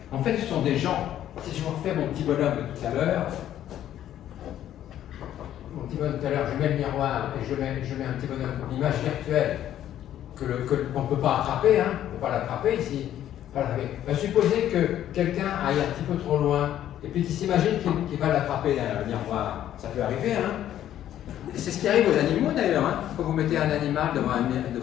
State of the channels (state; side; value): quieter; right; 11.6 dB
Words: ce sont des gens, si je vous refais mon petit bonhomme de tout à l'heure, je mets le miroir et je mets un petit bonhomme d'image virtuelle qu'on ne peut pas attraper, on ne peut pas l'attraper ici. Supposez que quelqu'un aille un petit peu trop loin et puis qu'il s'imagine qu'il va l'attraper derrière le miroir. Ça peut arriver, C'est ce qui arrive aux animaux d'ailleurs, Quand vous mettez un animal devant